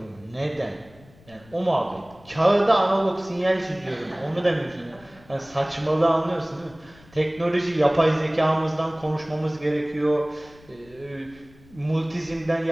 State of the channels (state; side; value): noise; left; rumble, 25 dB below the sound